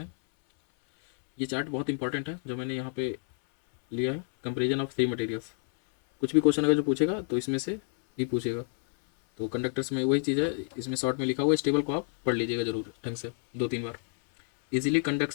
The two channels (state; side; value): silent; right; 59 dB below the other